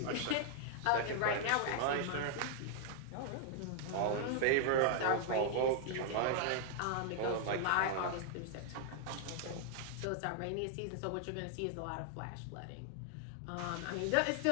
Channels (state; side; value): different; both; correlation -0.01